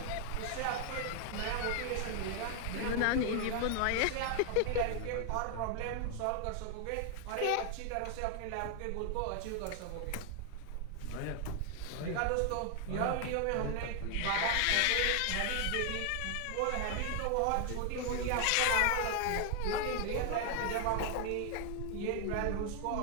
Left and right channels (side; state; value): both; different; correlation 0.00